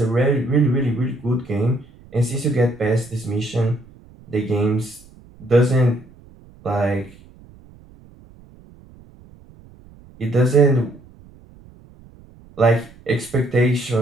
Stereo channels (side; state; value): right; noise; rumble, 24 dB below the sound